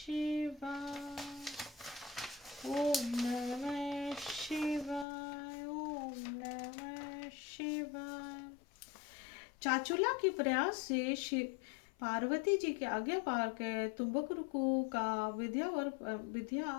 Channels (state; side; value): drops out; right; at 5.1 s